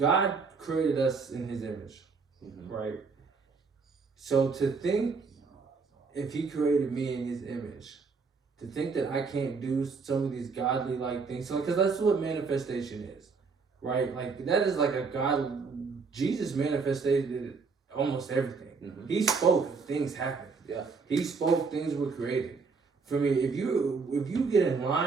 created us in His image, right? So to think, if He created me in His image, to think that I can't do some of these godly like things, so because that's what manifestation is, right? Like that is like a God. Jesus manifested almost everything. He spoke, things happened. Yeah. He spoke, things were created. For me, if you get in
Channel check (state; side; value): quieter; left; 4.8 dB